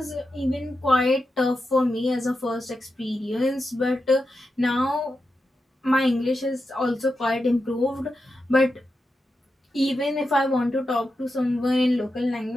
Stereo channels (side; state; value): both; normal; correlation 0.88